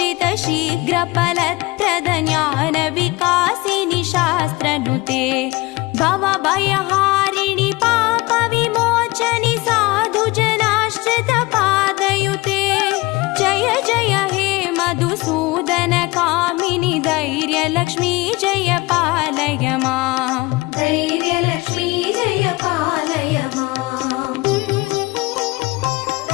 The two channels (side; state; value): right; quieter; 22.2 dB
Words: शीघ्रफलप्रद ज्ञानविकासिनि शास्त्रनुते भवभयहारिणि पापविमोचनि साधुजनाश्रितपादयुते. जय जय हे मधुसूदन कामिनि धैर्यलक्ष्मी जय पालय माम्. धैर्यलक्ष्मी जय पालय माम्.